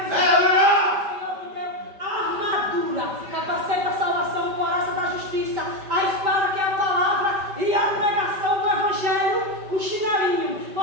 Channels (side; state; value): left; late; 5.1 ms